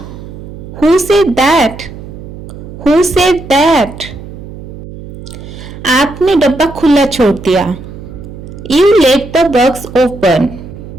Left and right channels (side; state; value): right; noise; hum, 14 dB below the sound